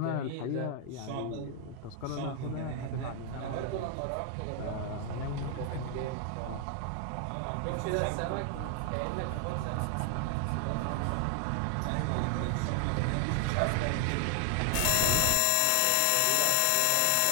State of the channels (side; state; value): both; different; correlation 0.00